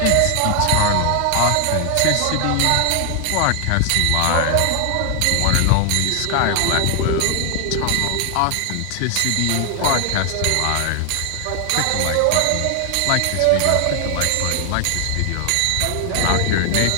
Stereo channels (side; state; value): both; different; correlation 0.00